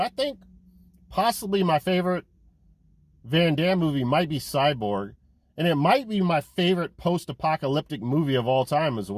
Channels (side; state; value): both; identical; correlation 1.00